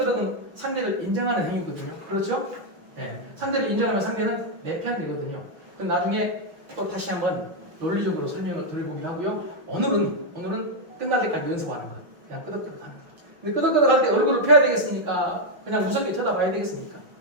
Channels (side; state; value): left; late; 5.8 ms